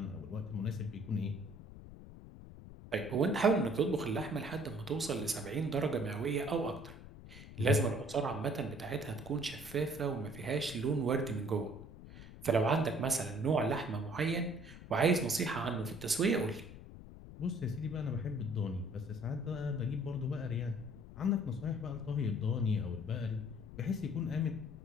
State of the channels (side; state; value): left; noise; rumble, 15 dB below the sound